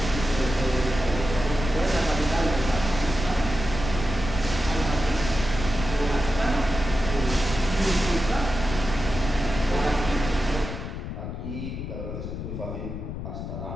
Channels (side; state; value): left; noise; rumble, 7 dB below the sound